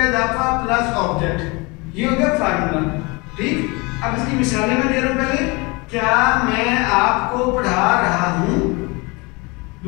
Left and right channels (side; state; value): right; quieter; 26.8 dB